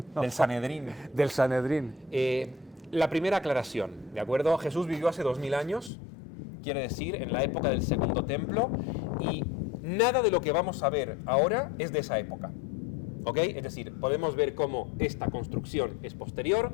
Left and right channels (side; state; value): right; drops out; at 5.9 s